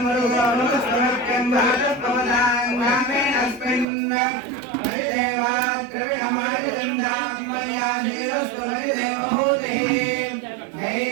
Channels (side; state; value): left; drops out; at 3.9 s